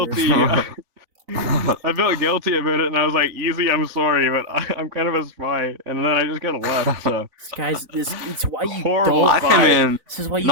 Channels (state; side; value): late; left; 4.0 ms